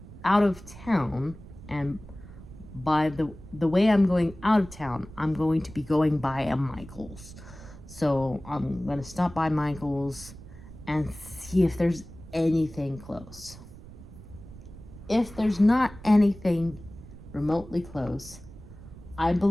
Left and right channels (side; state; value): right; noise; rumble, 17 dB below the sound